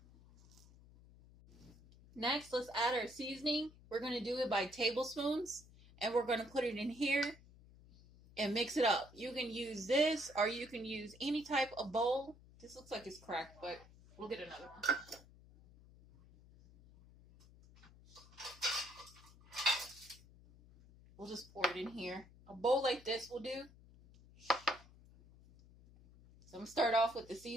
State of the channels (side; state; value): left; noise; hum, 22 dB below the sound